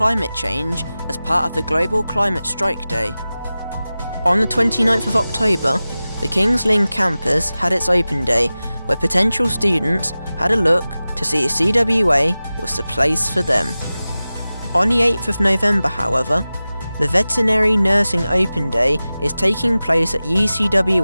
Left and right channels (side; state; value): both; inverted; correlation -0.96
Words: change as part of the Global Climate Strike Day. On the 29th of October, the King's Lynn campus had its open day, where potential students had a look to see if CWA was the place for them. On the 8th of November, however, the Veterinary Nursing Open Day is taking place at